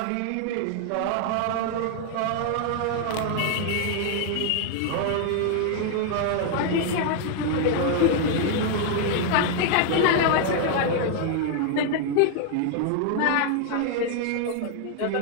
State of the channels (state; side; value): different; both; correlation 0.00